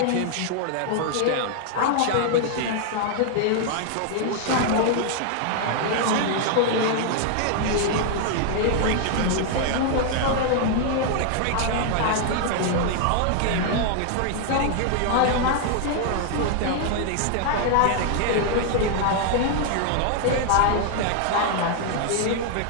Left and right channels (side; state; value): both; different; correlation 0.00